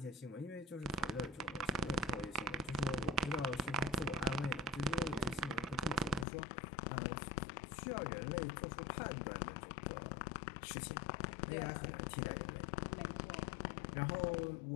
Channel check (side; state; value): right; drops out; at 6.2 s